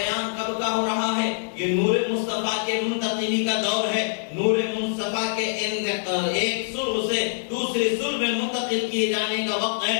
کب کا ہو رہا ہے؟ یہ نور مصطفیٰ کے منتقلی کا دور ہے۔ نور مصطفیٰ کے ایک صلب سے دوسری صلب میں منتقل کیے جانے کا وقت ہے۔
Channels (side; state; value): right; silent; digital silence